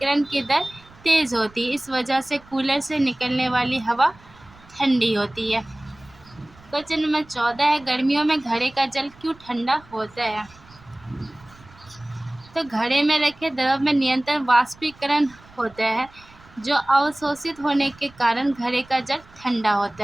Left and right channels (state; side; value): noise; right; rumble, 25 dB below the sound